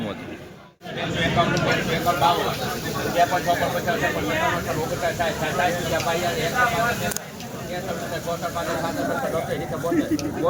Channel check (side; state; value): both; identical; correlation 1.00